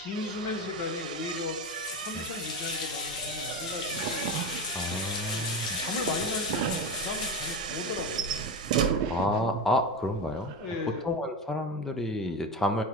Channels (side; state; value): both; normal; correlation 0.21